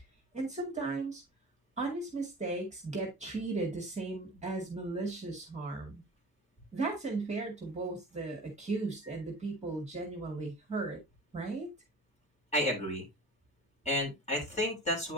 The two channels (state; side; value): normal; both; correlation 0.38